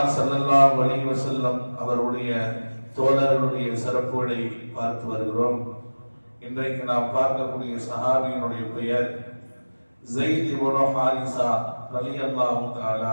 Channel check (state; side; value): inverted; both; correlation -1.00